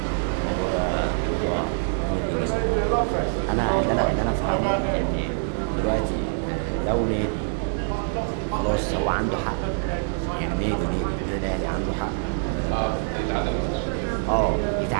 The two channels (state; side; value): silent; left; 62 dB below the other